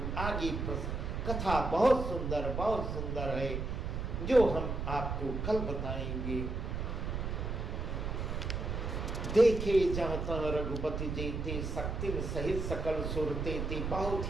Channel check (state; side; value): noise; right; rumble, 3 dB below the sound